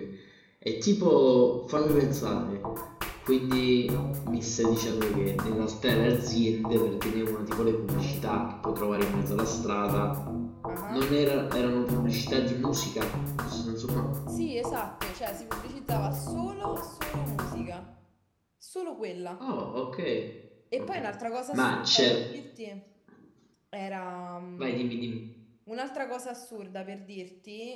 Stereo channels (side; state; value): both; identical; correlation 1.00